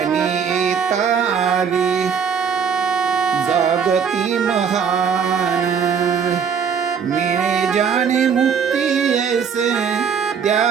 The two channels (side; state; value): left; quieter; 6.8 dB